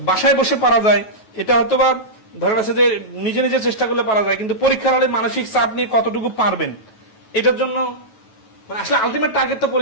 বাসায় বসে পারা যায়, এটা হয়তো বা ধরে আছে যে নিজে নিজে চেষ্টা করলে পারা যায়, কিন্তু পরীক্ষার হলে মানসিক চাপ নিয়ে কতটুকু পারবেন এটার জন্য মানে আসলে আলটিমেট টার্গেট তো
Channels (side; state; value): right; late; 9.2 ms